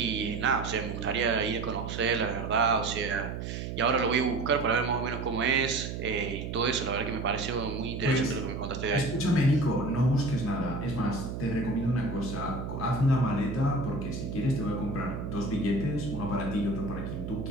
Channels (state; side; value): noise; right; hum, 6 dB below the sound